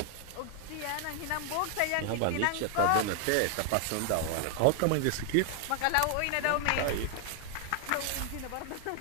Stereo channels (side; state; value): both; different; correlation 0.00